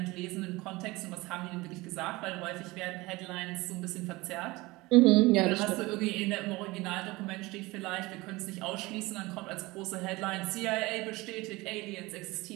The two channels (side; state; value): left; quieter; 21.7 dB